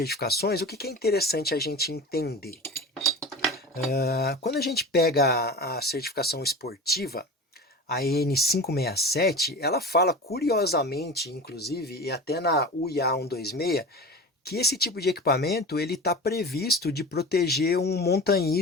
o que é interessante a gente entender? Quando a gente pega a certificação esportiva, a EN567, ela fala curiosamente, inclusive, e até na UIA 126, que esse tipo de equipamento ele está previsto de proteger um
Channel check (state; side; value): normal; both; correlation 0.32